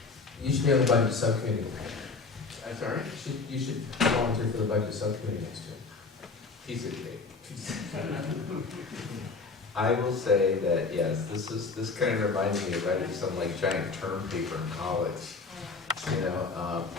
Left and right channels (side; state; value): right; quieter; 4.3 dB